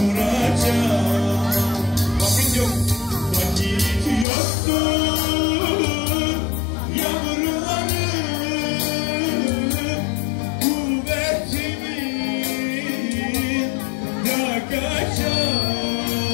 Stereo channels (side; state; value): right; drops out; at 4.2 s